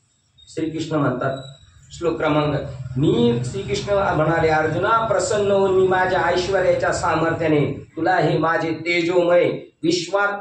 श्रीकृष्ण म्हणतात श्लोक क्रमांक, मी श्रीकृष्ण म्हणाले अर्जुना प्रसन्न होऊन मी माझ्या ऐश्वर्याच्या सामर्थ्याने तुला हे माझे तेजोमय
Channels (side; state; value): both; identical; correlation 1.00